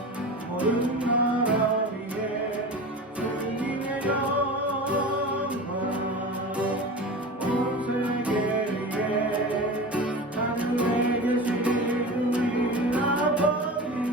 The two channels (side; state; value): both; normal; correlation 0.31